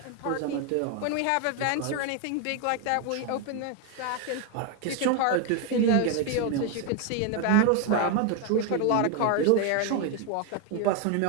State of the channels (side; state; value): both; different; correlation 0.01